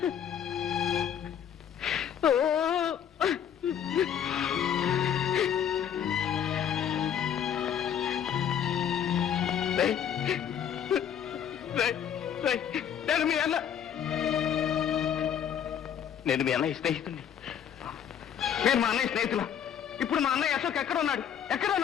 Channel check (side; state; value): right; quieter; 8.9 dB